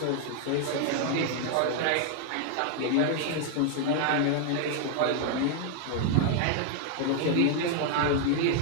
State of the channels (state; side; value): different; both; correlation 0.00